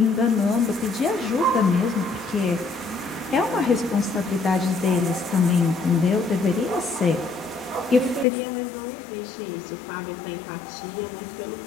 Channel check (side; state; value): right; drops out; at 8.2 s